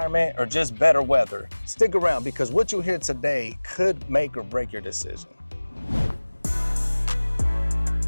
or just better weather, stick around because what you hear today could make or break your decision.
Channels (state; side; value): inverted; both; correlation -1.00